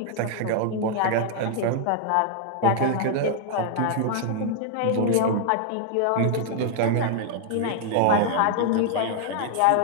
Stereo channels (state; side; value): different; both; correlation -0.01